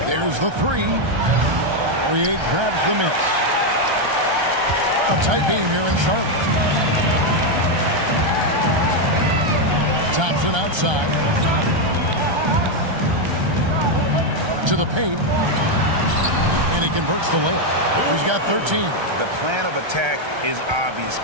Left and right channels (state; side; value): late; left; 1.3 ms